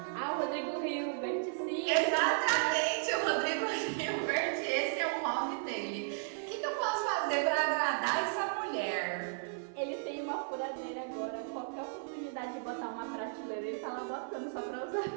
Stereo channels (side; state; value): left; silent; digital silence